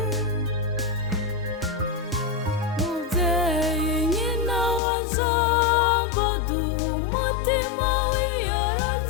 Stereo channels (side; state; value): right; drops out; at 4.8 s